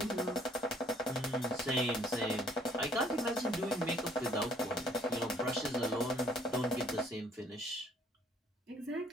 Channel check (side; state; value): both; normal; correlation 0.61